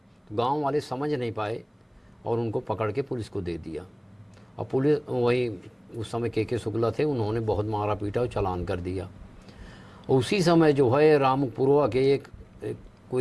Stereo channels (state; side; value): identical; both; correlation 1.00